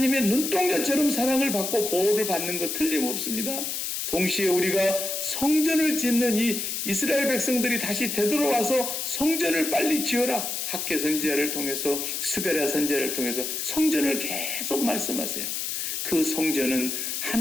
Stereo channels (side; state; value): left; noise; hiss, 3 dB below the sound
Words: 눈동자처럼 사랑을 받고 보호를 받는 것 틀림없습니다. 동시에 우리가 성전을 짓는 이 이스라엘 백성들이 다시 되돌아와서 성전을 빨리 지어라. 학개 선지자를 통해서 스가랴 선지자를 통해서 성전을 계속 말씀하세요. 그 성전은